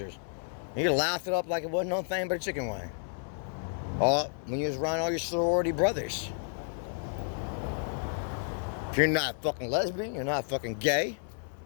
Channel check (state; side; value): silent; right; 57 dB below the other